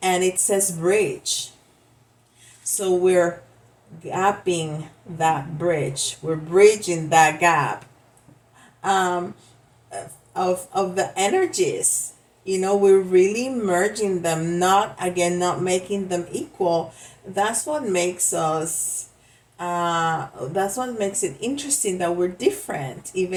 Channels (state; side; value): identical; both; correlation 1.00